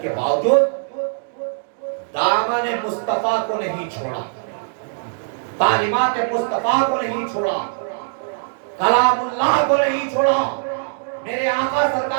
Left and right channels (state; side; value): silent; left; digital silence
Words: کے باوجود دامن مصطفیٰ کو نہیں چھوڑا، تعلیمات مصطفیٰ کو نہیں چھوڑا، کلام اللہ کو نہیں چھوڑا۔ میرے آقا